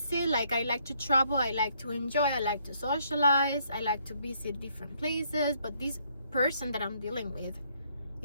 Like, I like to travel, I like to enjoy, I like to socialize, I like to visit different places, but this person that I'm dealing with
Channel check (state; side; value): inverted; both; correlation -0.70